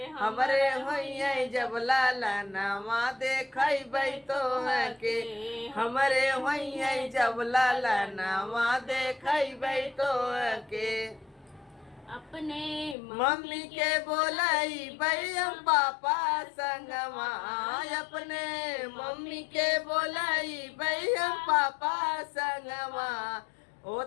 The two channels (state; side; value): drops out; right; at 13.0 s